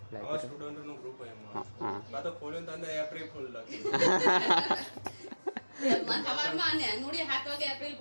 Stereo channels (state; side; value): inverted; both; correlation -1.00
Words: આવા સ્ટુડન્ટ નું ગ્રુપ એમાં હા બા તો ખોલ્યો તો અંદર એપ્રિલ ફૂલ લખી સવારમાં ને નુડી 7 વાગે એપ્રિલ